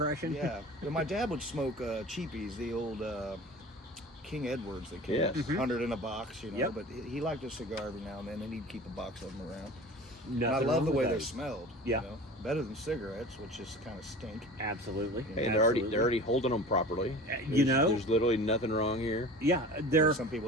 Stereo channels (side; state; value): both; normal; correlation 0.39